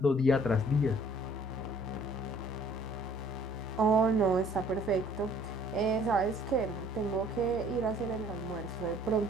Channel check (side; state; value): both; normal; correlation 0.57